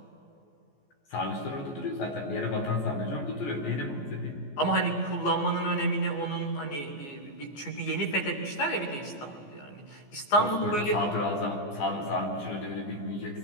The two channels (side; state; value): right; late; 14 ms